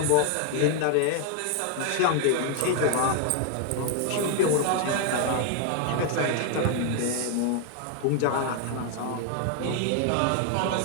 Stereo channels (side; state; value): both; different; correlation 0.00